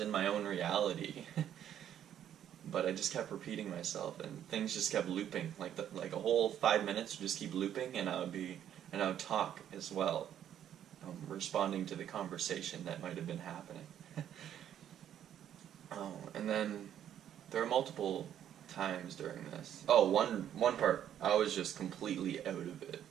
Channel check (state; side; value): quieter; left; 10.3 dB